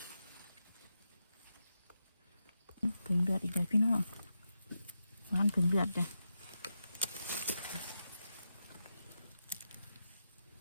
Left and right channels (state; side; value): inverted; both; correlation -0.88